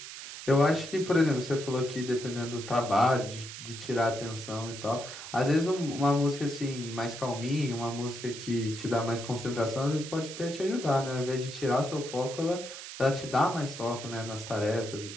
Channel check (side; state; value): right; noise; hiss, 11 dB below the sound